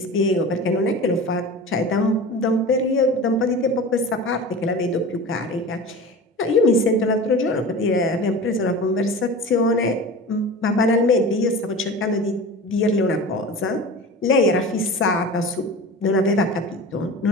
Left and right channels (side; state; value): both; normal; correlation 0.34